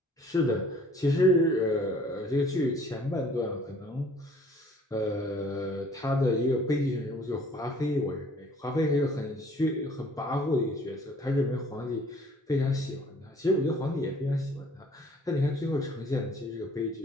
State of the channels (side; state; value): both; normal; correlation 0.55